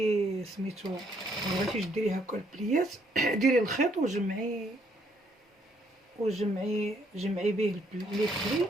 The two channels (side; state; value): both; normal; correlation 0.69